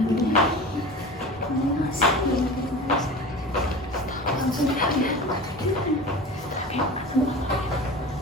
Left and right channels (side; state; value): both; normal; correlation 0.34